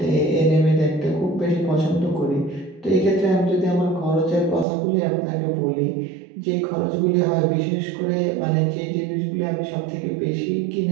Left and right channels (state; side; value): drops out; left; at 4.7 s